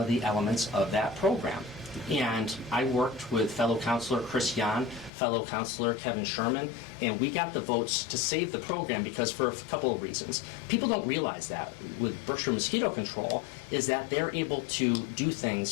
of the elements of that program. And I worked with fellow councilor Chris Yan, fellow councilor Kevin Sherman, and we got the votes to save the program because for a couple of reasons. People don't realize that with Berkshire Mosquito Control is that they're able to do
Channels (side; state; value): right; drops out; at 5.1 s